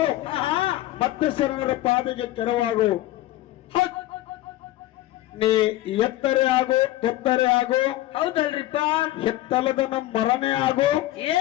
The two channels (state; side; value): quieter; right; 15.7 dB